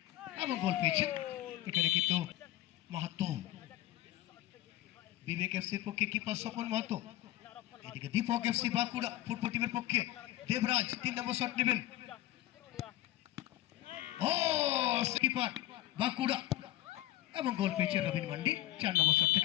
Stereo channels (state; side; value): quieter; right; 15.1 dB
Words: এবং গোল পেয়েছেন এখানে কিন্তু মাহাতো বিবেক এফসির পক্ষে কিপার স্বপন মাহাতো এদিকে দীপক এফসি বাঁকুড়া ফুটবল টিমের পক্ষে দেবরাজ 3 নম্বর শট নেবেন ও কিপার বাঁকুড়া এবং গোল পেয়েছে রবিন মান্ডি 4 নম্বর শট